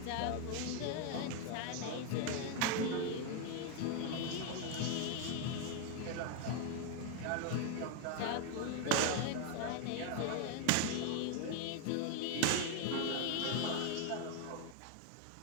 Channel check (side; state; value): both; different; correlation 0.01